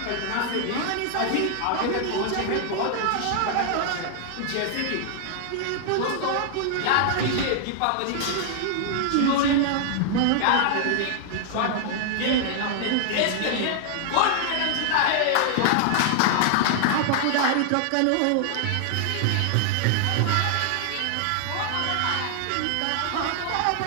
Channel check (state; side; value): different; both; correlation 0.00